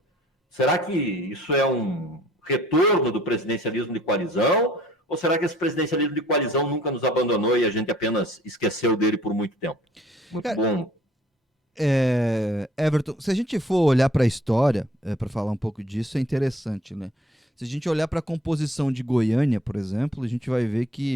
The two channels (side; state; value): both; normal; correlation 0.56